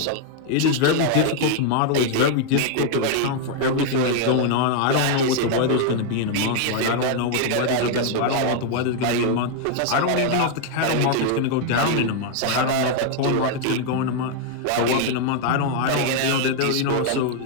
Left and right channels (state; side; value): different; both; correlation 0.00